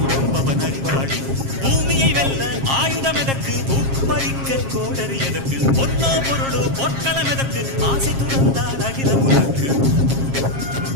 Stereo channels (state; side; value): late; left; 7.4 ms